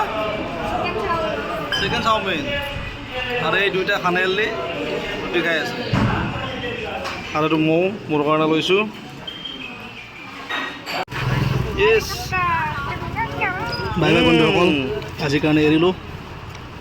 Chicken chowmein. আৰু এই দুইটা খানেলি ৰুটি খাই আছে। আৰু এইটো মৌ মোৰ কাৰণে লৈছোঁ। ইয়েছ। বাই বাই বন্ধুসকল, আজিৰ কাৰণে এৰিলোঁ।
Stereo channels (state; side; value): identical; both; correlation 1.00